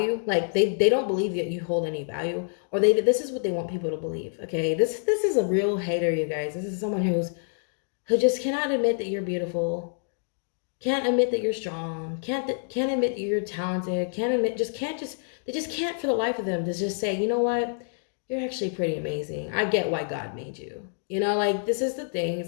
Like they don't believe that you hold any value, or this is what they want people to believe. Okay, this is a real hater, you guys. This is someone who just cannot admit that you're beautiful, can't admit that you're strong, can't admit that you're talented, they just can't for the life of them to just say, you know what, you're actually pretty amazing. I get why God made you. You know, like this is the thing.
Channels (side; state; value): right; silent; digital silence